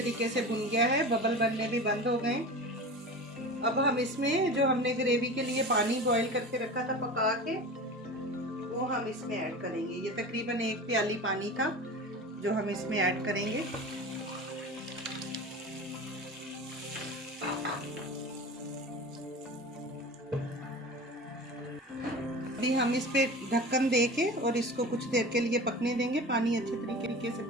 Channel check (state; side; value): normal; both; correlation 0.33